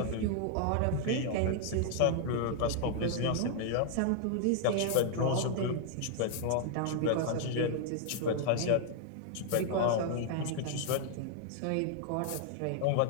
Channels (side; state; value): both; different; correlation 0.00